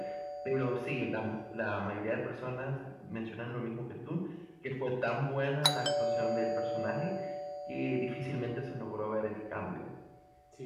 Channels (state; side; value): identical; both; correlation 1.00